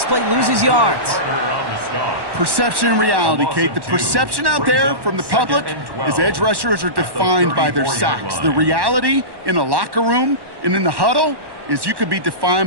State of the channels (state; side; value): late; left; 1.1 ms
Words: play loses yards. Perception and reality, Kate. The perception out there from the public is edge rushers are defined by their sacks. The reality in a locker room and in the huddle is you could be